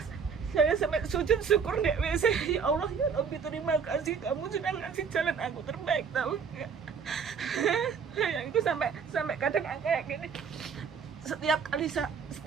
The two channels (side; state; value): left; quieter; 6.2 dB